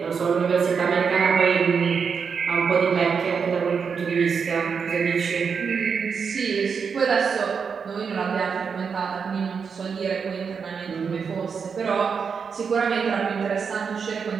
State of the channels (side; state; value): left; quieter; 6.1 dB